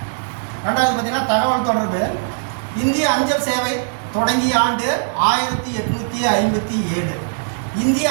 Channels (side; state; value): left; silent; digital silence